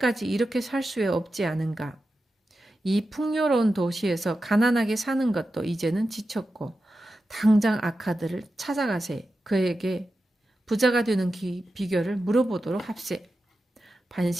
이렇게 살 수 없지 않은가? 이 풍요로운 도시에서 가난하게 사는 것도 이제는 지쳤고 당장 아카드를 찾아가세. 그에게 부자가 되는 비결을 물어보도록 합세.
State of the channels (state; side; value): normal; both; correlation 0.91